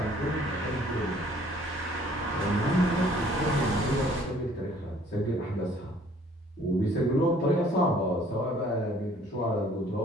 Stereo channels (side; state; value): both; normal; correlation 0.57